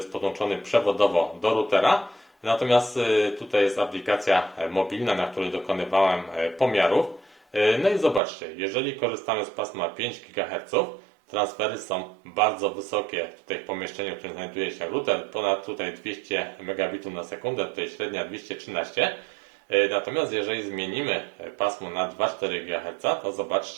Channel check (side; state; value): left; drops out; at 8.2 s